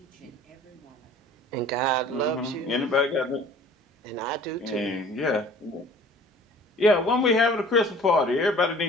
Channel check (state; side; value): normal; both; correlation 0.48